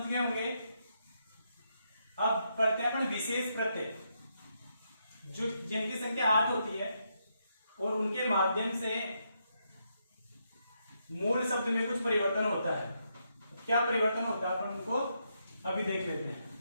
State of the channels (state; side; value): inverted; both; correlation -0.80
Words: गए होंगे। अब पढ़ते हैं अपने विशेष प्रत्यय जो जिनकी संख्या 8 होती है और उनके माध्यम से मूल शब्द में कुछ परिवर्तन होता है। क्या परिवर्तन होता है अपन उनको अभी देख लेते हैं।